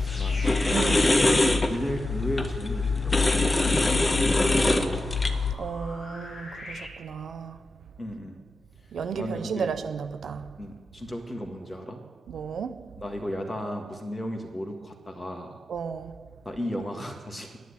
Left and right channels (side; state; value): both; normal; correlation 0.90